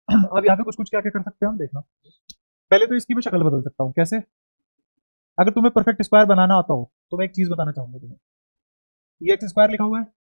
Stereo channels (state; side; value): inverted; both; correlation -1.00